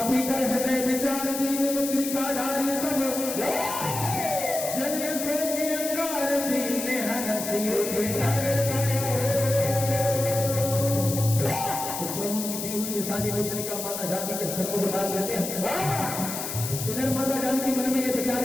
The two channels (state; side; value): noise; left; hiss, 5 dB below the sound